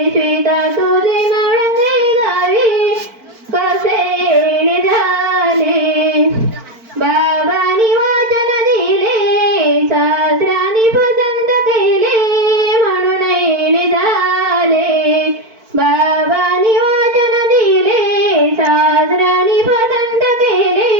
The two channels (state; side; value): late; left; 4.5 ms